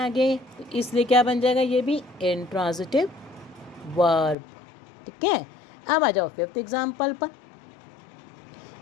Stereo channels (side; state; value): right; drops out; at 4.4 s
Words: तो इसलिए क्या बन जाएगा, ये भी इनट्रांजिटिव वर्ब, ठीक है। अब आ जाओ फिफ्थ एग्जाम्पल पर,